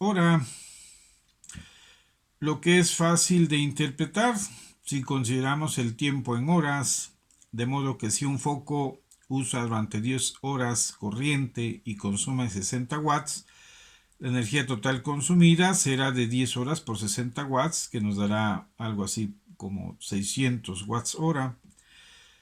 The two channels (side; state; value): both; identical; correlation 1.00